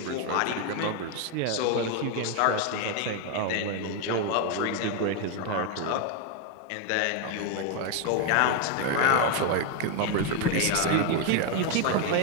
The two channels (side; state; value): both; different; correlation 0.01